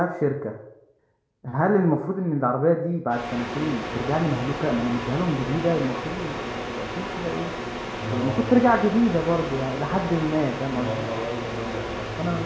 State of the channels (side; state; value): both; identical; correlation 1.00